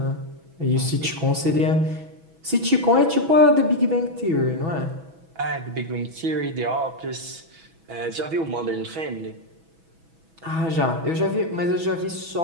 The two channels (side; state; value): left; late; 6.1 ms